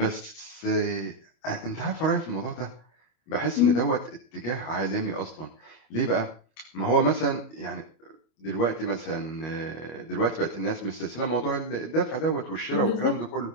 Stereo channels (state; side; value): late; right; 25 ms